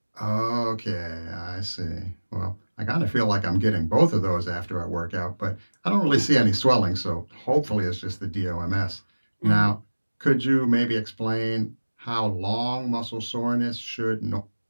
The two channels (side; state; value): both; inverted; correlation -1.00